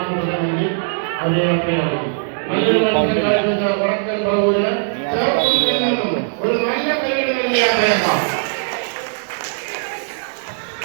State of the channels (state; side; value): silent; left; digital silence